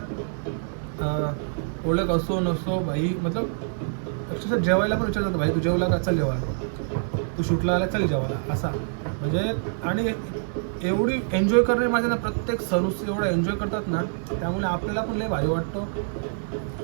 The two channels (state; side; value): silent; left; 59 dB below the other